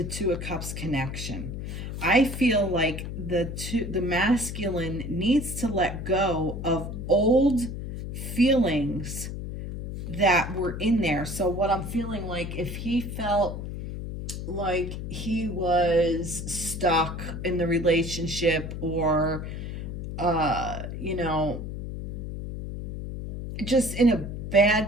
Two of Cups connection. I feel like the masculine needs to let go of old feelings that were in there. So what I'm feeling like, if he felt like he was stuck in the relationship, or you know, just in a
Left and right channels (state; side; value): noise; left; hum, 6 dB below the sound